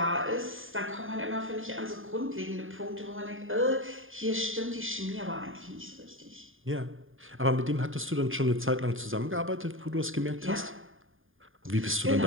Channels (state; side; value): late; left; 0.59 ms